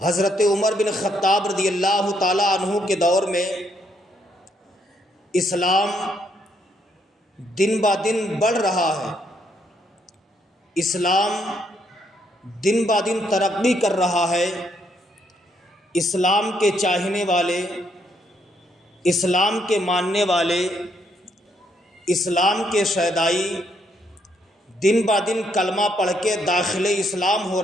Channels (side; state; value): both; normal; correlation 0.73